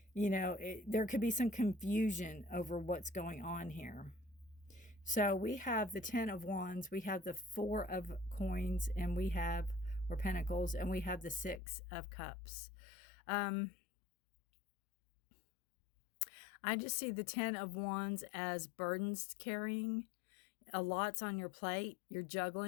there could be some confusion over what's going on here. So we have the Ten of Wands, we have the Four of Coins, and we have, or Pentacles, and we have the Six of Cups. I just see the Ten of Wands as burdens carrying. A lot's on your plate. You're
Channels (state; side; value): drops out; right; at 11.6 s